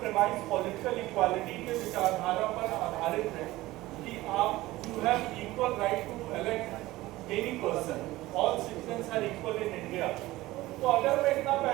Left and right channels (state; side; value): quieter; left; 17.9 dB